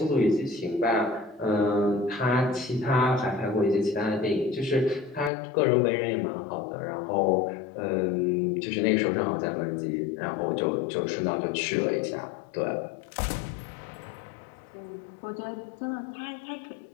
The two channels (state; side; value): drops out; right; at 5.3 s